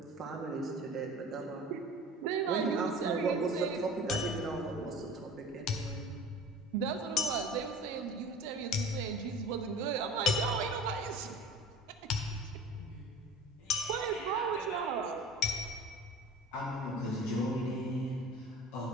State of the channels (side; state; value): both; normal; correlation 0.39